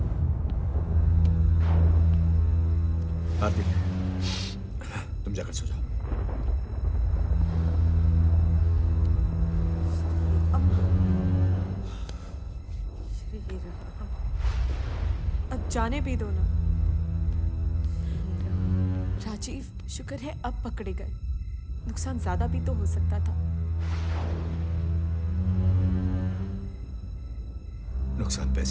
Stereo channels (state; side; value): identical; both; correlation 1.00